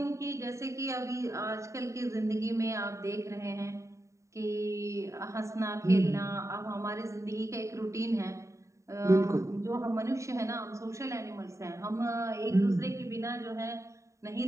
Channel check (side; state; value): left; late; 0.15 ms